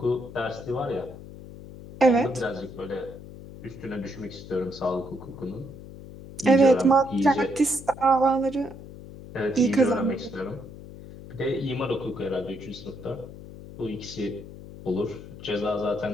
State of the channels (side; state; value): left; noise; hum, 15 dB below the sound